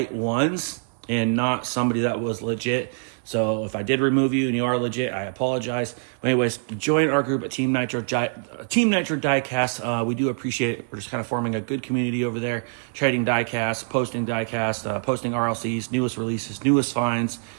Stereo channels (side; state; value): left; silent; digital silence